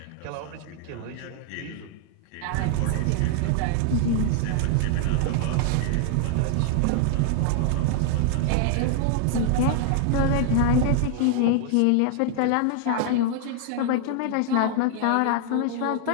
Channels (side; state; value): both; different; correlation -0.01